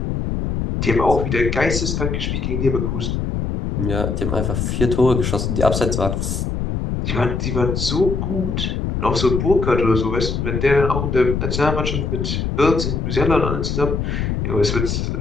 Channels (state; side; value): noise; left; rumble, 1 dB below the sound